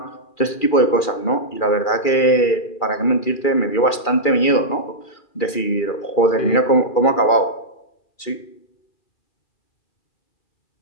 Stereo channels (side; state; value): right; late; 2.3 ms